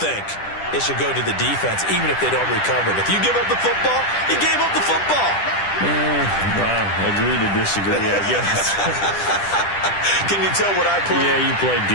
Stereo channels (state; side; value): late; right; 10 ms